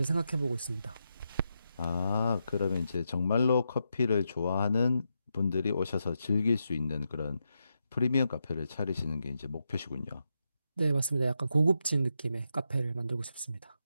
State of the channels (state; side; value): inverted; both; correlation -0.85